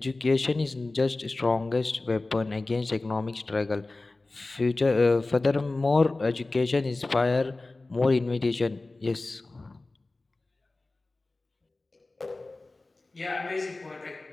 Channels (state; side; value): quieter; right; 3.2 dB